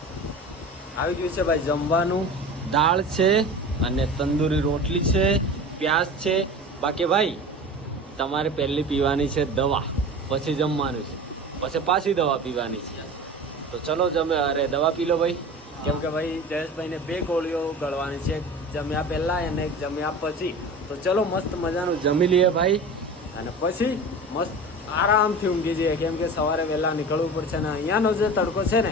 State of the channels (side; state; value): both; normal; correlation 0.35